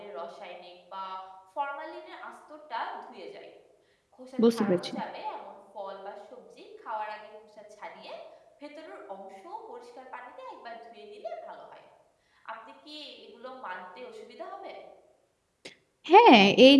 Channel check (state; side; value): identical; both; correlation 1.00